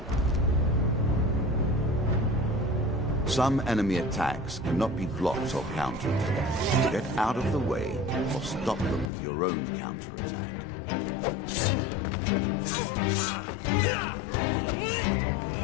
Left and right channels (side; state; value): right; drops out; at 9.1 s